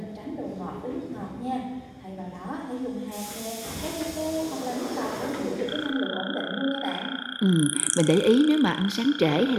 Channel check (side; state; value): both; identical; correlation 1.00